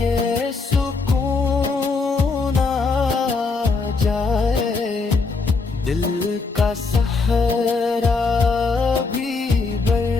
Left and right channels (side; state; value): right; quieter; 4.2 dB